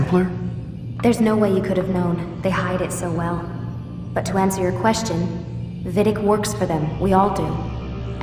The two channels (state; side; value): identical; both; correlation 1.00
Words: There's no way you could have known. They hide it so well. But to answer your question, Vidic works for them. We all do.